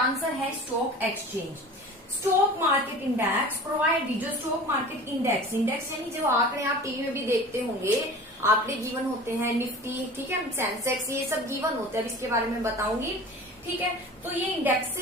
है stock exchange. Stock market index provide, जो स्टॉक मार्केट इंडेक्स यानी जो आंकड़े आप टीवी में भी देखते होंगे, आंकड़े गिवन होते हैं, निफ्टी, ठीक है, सेंसेक्स, ये सब गिवन होते हैं, अब इसके बारे में बताऊंगी। ठीक है, तो ये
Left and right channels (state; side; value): normal; both; correlation 0.39